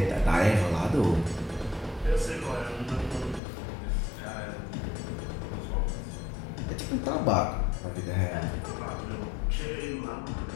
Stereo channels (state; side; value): drops out; right; at 3.4 s